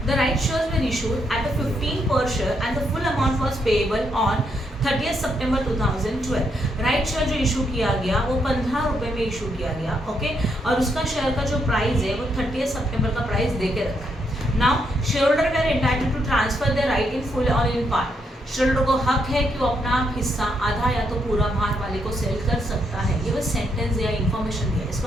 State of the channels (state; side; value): normal; both; correlation 0.77